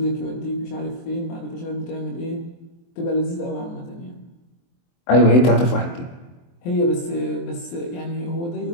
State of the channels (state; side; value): late; right; 23 ms